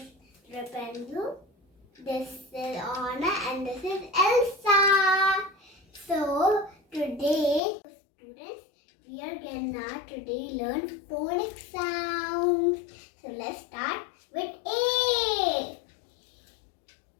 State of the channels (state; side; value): drops out; right; at 7.6 s